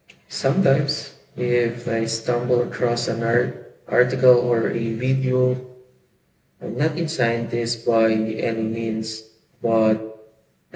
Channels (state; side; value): identical; both; correlation 1.00